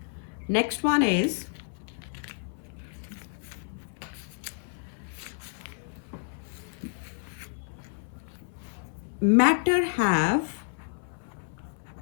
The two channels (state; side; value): silent; right; 58 dB below the other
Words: Next one is matter have